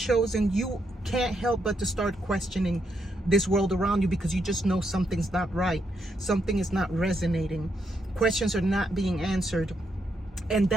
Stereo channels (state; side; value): normal; both; correlation 0.79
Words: you can't help but to start questioning this world around you, because you just know something's not right, something is not resonating, questions are not being answered. And